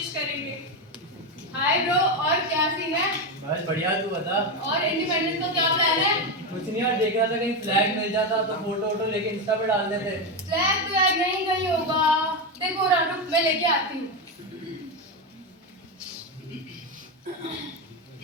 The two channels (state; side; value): normal; both; correlation 0.11